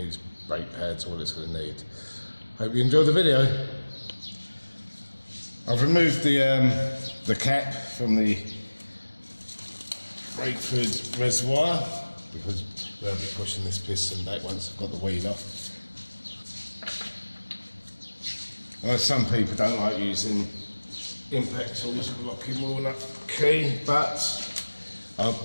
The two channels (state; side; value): inverted; both; correlation -1.00